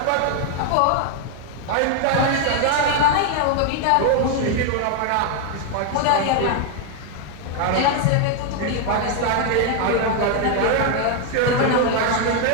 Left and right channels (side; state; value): both; different; correlation 0.00